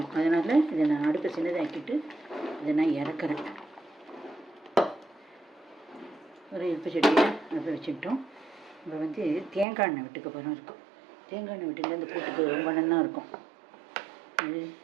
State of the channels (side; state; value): left; drops out; at 9.7 s